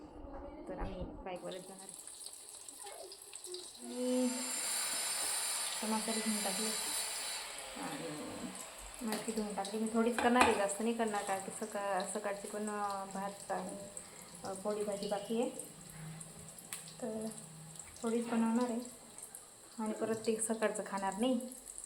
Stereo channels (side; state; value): both; identical; correlation 1.00